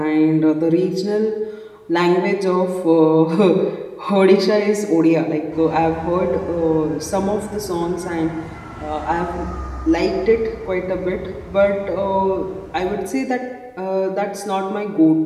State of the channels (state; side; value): identical; both; correlation 1.00